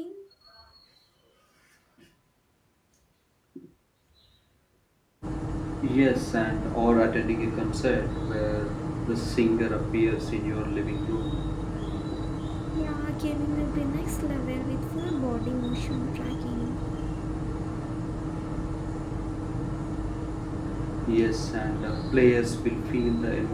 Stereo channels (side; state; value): both; identical; correlation 1.00